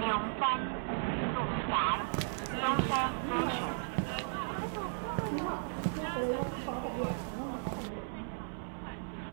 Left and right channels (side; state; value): left; silent; digital silence